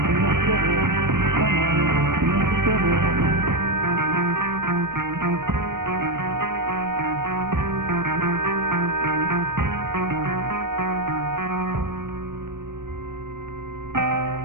the city, summer, in the city?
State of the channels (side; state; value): left; late; 0.90 ms